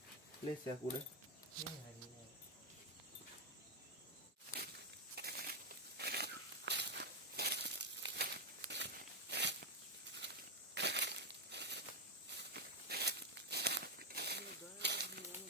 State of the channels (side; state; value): both; normal; correlation 0.03